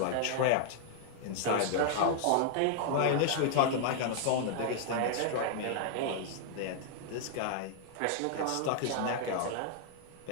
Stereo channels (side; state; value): both; different; correlation 0.00